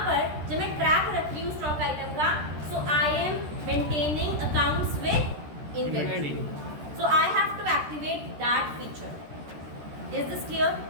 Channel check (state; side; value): late; left; 13 ms